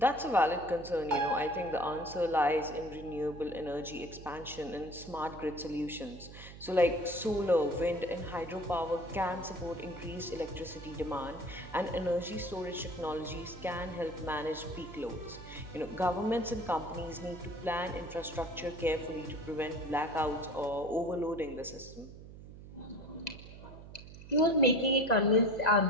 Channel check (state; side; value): noise; right; hum, 15 dB below the sound